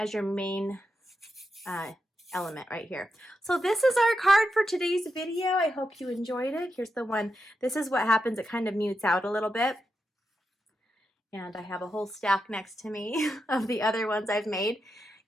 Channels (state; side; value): normal; both; correlation 0.86